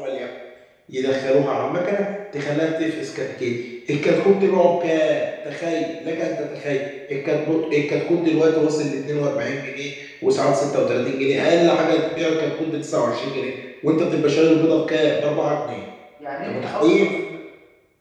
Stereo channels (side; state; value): both; identical; correlation 1.00